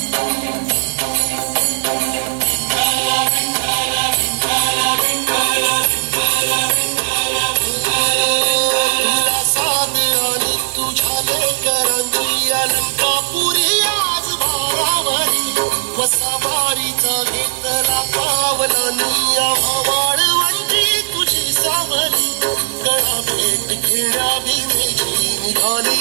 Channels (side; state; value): left; silent; digital silence